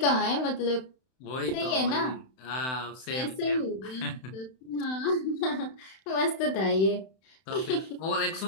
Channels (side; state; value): right; late; 31 ms